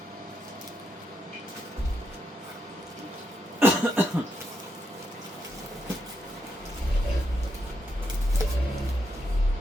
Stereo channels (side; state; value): both; normal; correlation 0.81